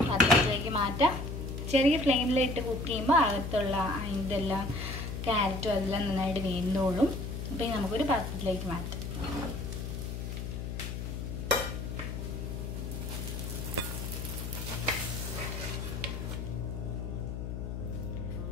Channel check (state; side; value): noise; left; hum, 5 dB below the sound